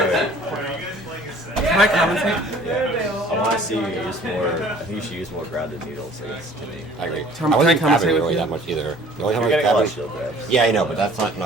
Can I commentate? Yeah. I want to see you use more. I think you should use more grounded needles against Timmy. I agree. Tom, I wasn't can I commentate grabbing with really you? that much either. The only time You're I was getting a lot of grabbing. shield grabs. Yeah, I know, but that's not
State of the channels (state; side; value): normal; both; correlation 0.51